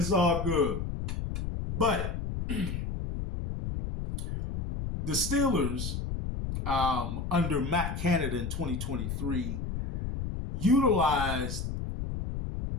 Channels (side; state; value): left; noise; rumble, 4 dB below the sound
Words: all good. But the Steelers, under Matt Canada in 2023, utilized